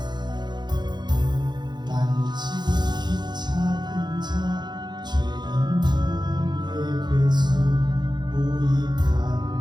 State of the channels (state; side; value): late; left; 0.21 ms